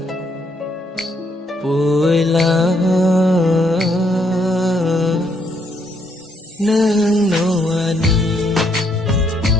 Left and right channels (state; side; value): normal; both; correlation 0.72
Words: vui lá nương nô